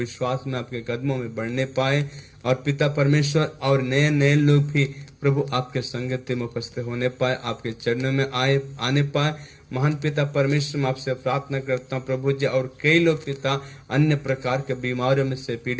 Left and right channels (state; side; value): identical; both; correlation 1.00